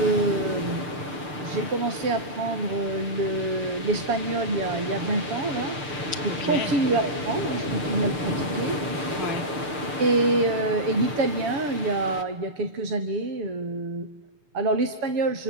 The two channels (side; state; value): left; late; 6.7 ms